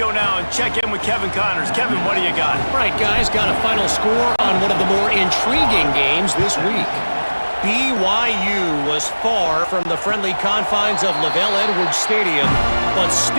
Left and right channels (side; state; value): both; inverted; correlation -1.00